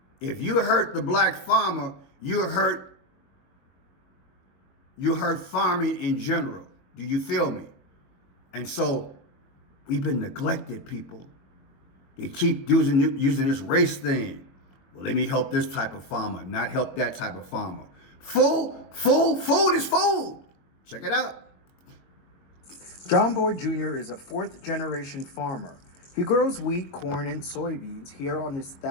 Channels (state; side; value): late; right; 22 ms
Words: If you hurt the black farmer, you hurt farming in general. Do you feel me? And so we've been neglected, people. They keep using this race thing. Well, let me help this type of farmer, not help that type of farmer. Food is food. Check it out. John Boyd Jr. is a fourth-generation farmer. He grows wheat, corn, and soybeans here on his